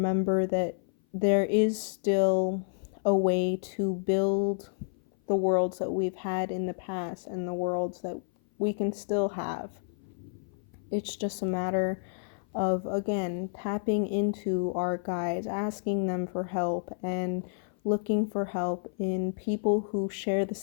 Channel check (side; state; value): right; silent; 56 dB below the other